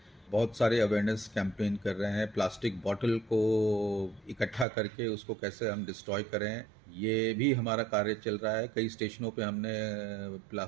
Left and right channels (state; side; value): drops out; left; at 4.7 s